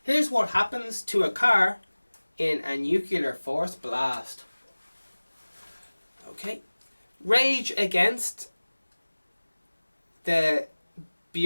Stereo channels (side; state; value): both; inverted; correlation -1.00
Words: Here's what happens to a car in a nuclear force blast. Okay. Rage against the